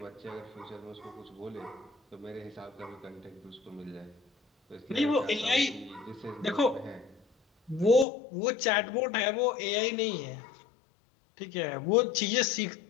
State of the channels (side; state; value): right; drops out; at 8.1 s